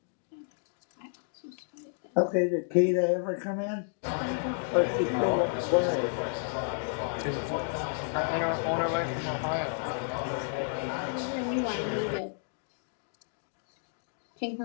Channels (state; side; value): silent; right; digital silence